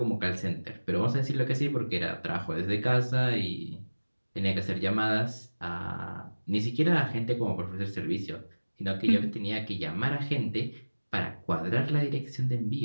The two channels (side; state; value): both; inverted; correlation -1.00